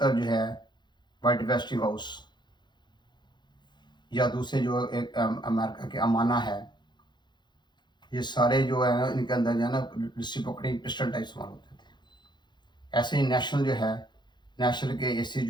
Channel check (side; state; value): right; late; 0.21 ms